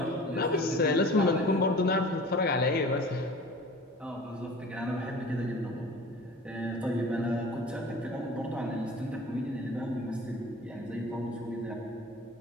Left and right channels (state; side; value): normal; both; correlation 0.42